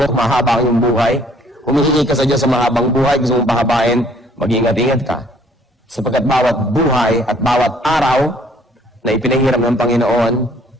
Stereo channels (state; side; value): normal; both; correlation 0.60